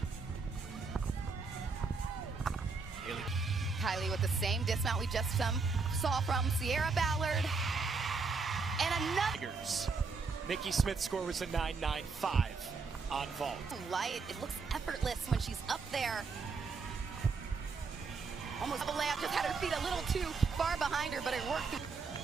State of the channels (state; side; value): quieter; left; 4.5 dB